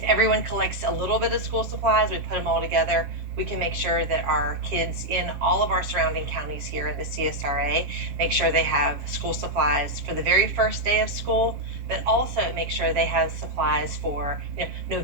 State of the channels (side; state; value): left; late; 7.4 ms